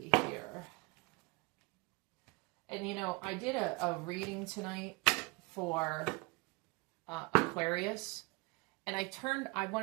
here. And, you know, I did a reading tonight for Aquarius. And I turned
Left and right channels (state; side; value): quieter; left; 26.3 dB